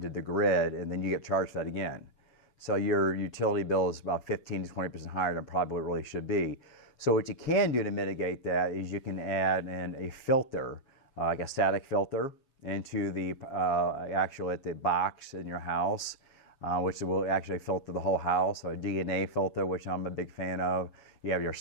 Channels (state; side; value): late; right; 7.3 ms